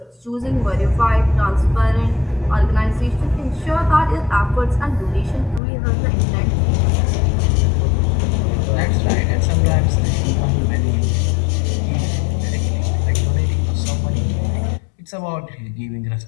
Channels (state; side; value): drops out; right; at 5.6 s